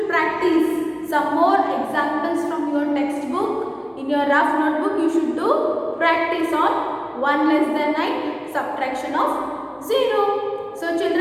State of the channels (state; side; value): identical; both; correlation 1.00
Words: practice some more examples from your textbook. In your rough notebook you should do practice on 1 less than 9, subtraction of 0. So